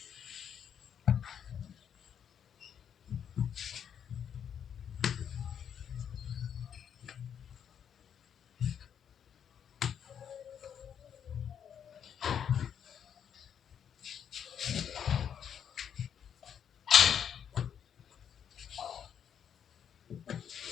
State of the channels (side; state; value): right; quieter; 8.4 dB